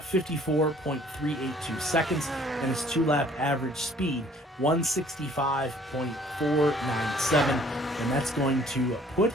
seconds, and his 2-lap average speed 165.497, and that's going to put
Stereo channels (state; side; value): normal; both; correlation 0.57